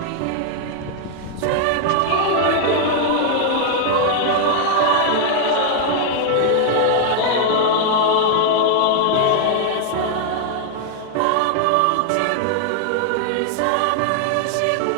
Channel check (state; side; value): different; both; correlation 0.00